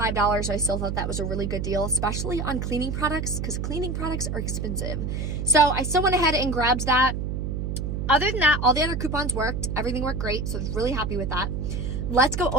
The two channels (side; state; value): right; noise; hum, 3 dB below the sound